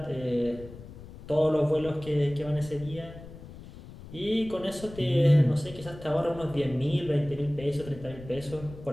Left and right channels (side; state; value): left; noise; rumble, 16 dB below the sound